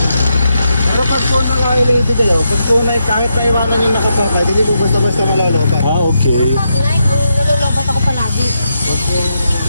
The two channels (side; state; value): both; inverted; correlation -0.83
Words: Pero pag po naka-related eh, pag po kahit naiwanan yung nakapakay, hindi po basta-basta malolobat. Okay. Mag-light, nalulobot ako palagi.